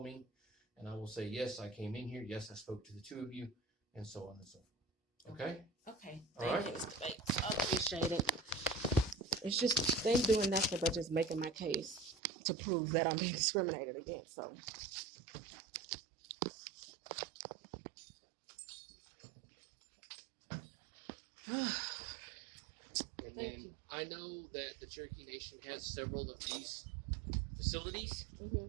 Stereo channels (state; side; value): drops out; left; at 12.2 s